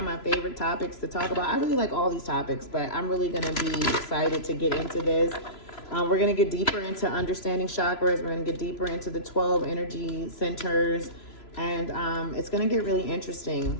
my favorite topics to talk about. I really like all these topics, but I'm really going to be excited to get into this. We're going to get deeper into understanding chakras. We're going to get deeper into the 12 energy centers, and it's going to get really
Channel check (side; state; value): right; late; 3.0 ms